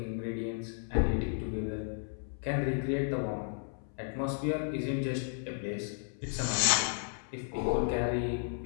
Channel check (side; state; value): right; silent; 55 dB below the other